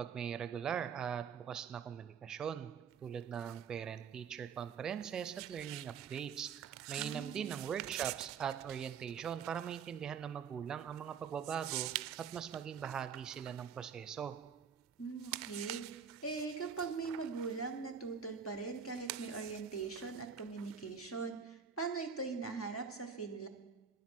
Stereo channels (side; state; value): left; quieter; 6.9 dB